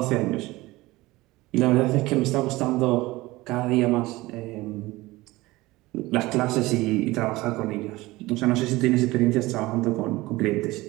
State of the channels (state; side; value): quieter; left; 19.7 dB